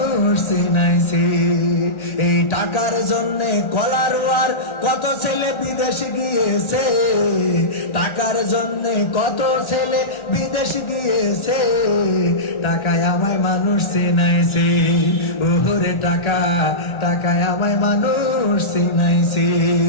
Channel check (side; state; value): right; late; 1.3 ms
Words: চিনাইছে। এই টাকার জন্য কলারওয়ার কত ছেলে বিদেশ গিয়েছে, টাকার জন্য কত ছেলে বিদেশ গিয়েছে, টাকায় আমায় মানুষ চিনাইছে। ওরে টাকা টাকায় আমায় মানুষ চিনাইছে।